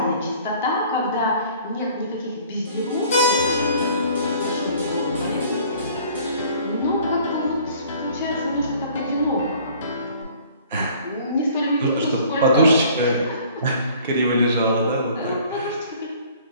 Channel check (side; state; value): both; inverted; correlation -0.53